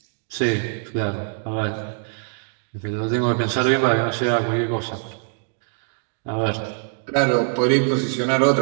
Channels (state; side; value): silent; left; digital silence